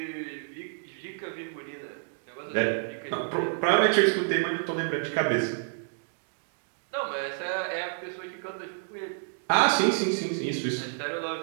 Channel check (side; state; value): left; silent; digital silence